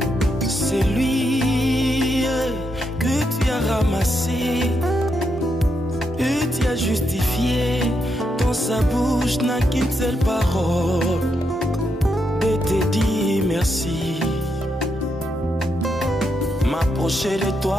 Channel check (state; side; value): normal; both; correlation 0.81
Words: C'est lui que tu as ramassé et tu as justifié. Dans sa bouche n'a qu'une seule parole de te dire merci. M'approcher de